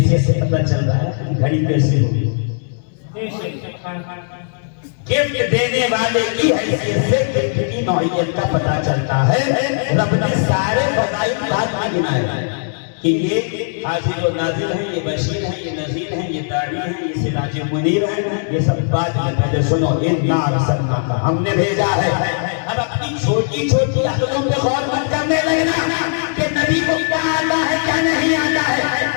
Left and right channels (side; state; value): right; silent; 67 dB below the other